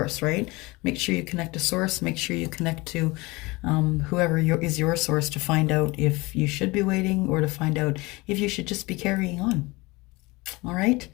right? Make sure you connect to Source. Make sure you connect to whoever is your source, to find out if you should be waiting, or to find out if you should just be carrying on. All right.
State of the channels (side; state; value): right; quieter; 23.3 dB